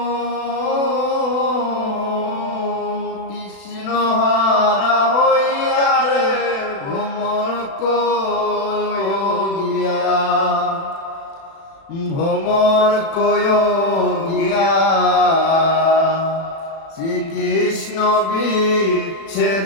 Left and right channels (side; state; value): right; late; 36 ms